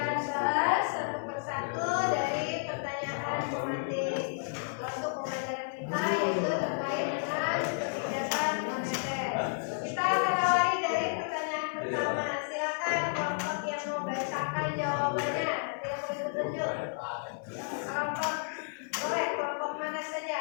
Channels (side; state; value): right; silent; 57 dB below the other